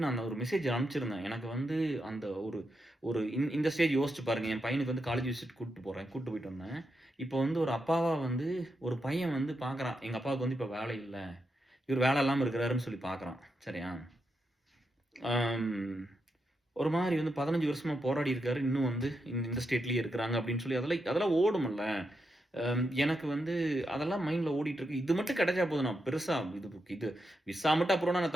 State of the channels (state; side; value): normal; both; correlation 0.84